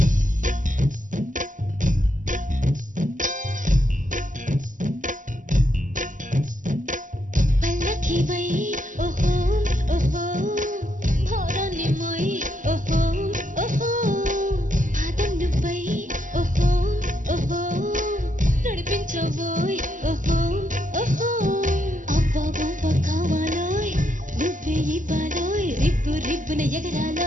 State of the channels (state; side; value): late; left; 0.37 ms